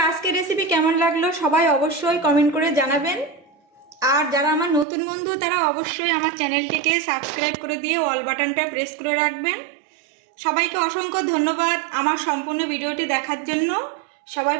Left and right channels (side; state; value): left; drops out; at 4.9 s